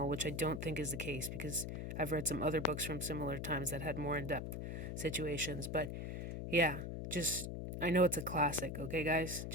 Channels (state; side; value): noise; left; hum, 5 dB below the sound